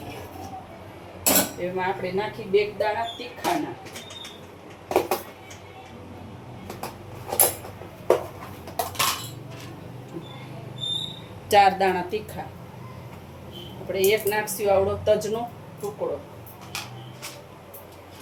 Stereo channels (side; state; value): both; identical; correlation 1.00